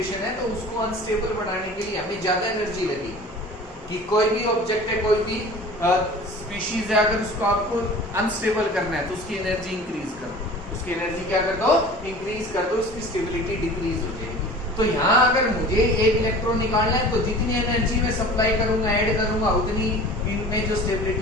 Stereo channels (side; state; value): both; normal; correlation 0.41